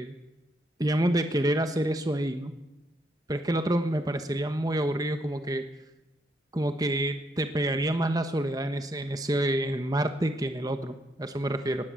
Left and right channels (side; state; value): both; normal; correlation 0.75